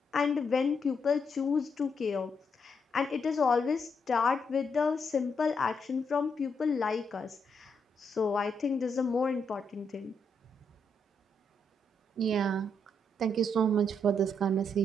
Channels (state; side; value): normal; both; correlation 0.78